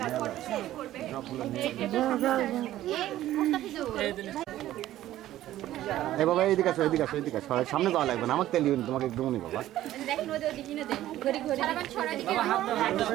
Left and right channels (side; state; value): left; quieter; 13.8 dB